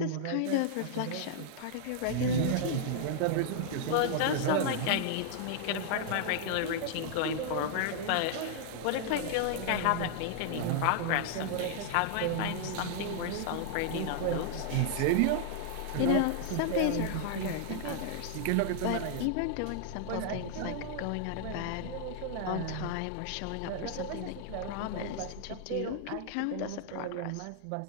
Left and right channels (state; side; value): different; both; correlation -0.01